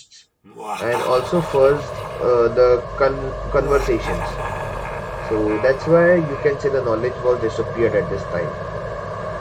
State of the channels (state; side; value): identical; both; correlation 1.00